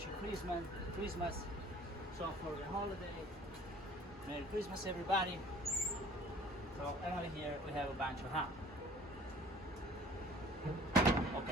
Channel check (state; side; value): normal; both; correlation 0.51